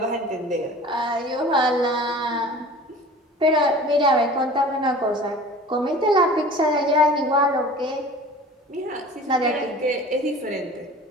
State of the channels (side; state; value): both; normal; correlation 0.42